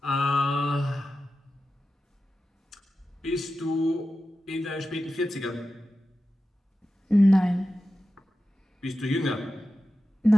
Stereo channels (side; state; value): both; normal; correlation 0.92